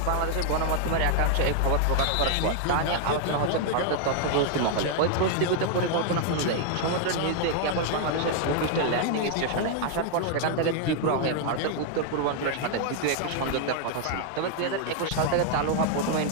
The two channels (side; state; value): both; different; correlation 0.00